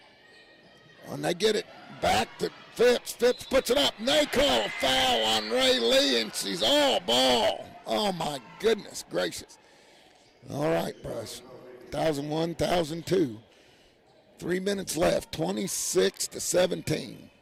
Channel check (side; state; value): both; identical; correlation 1.00